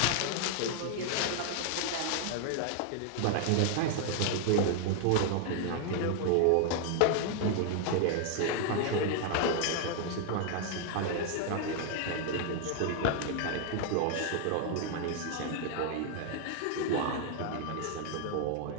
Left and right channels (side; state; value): both; different; correlation 0.00